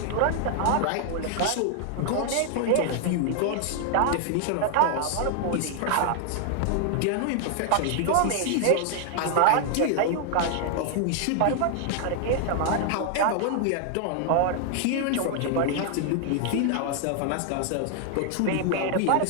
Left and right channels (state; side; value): different; both; correlation 0.00